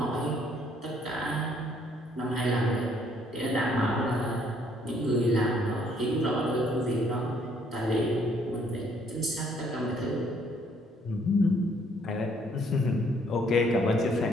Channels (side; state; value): both; normal; correlation 0.65